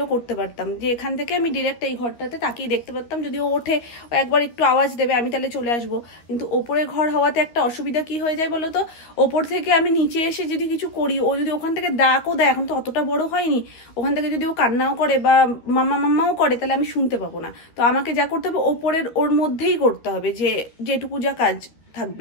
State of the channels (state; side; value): late; right; 13 ms